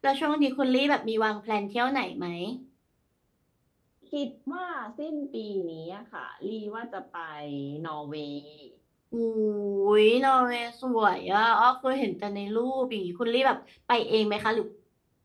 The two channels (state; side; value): identical; both; correlation 1.00